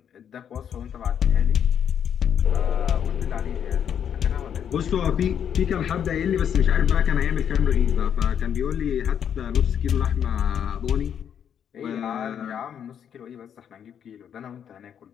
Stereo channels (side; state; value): right; quieter; 8.6 dB